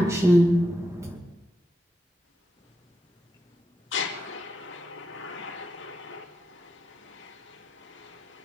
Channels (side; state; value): both; normal; correlation 0.86